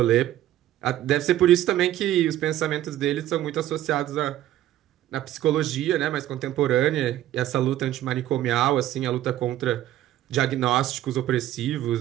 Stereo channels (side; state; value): left; quieter; 13.2 dB